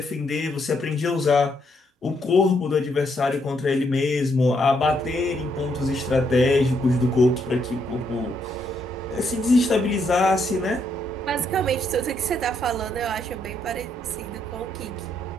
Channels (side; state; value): both; normal; correlation 0.75